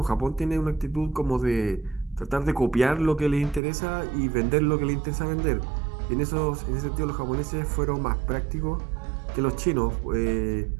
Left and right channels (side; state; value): left; drops out; at 3.6 s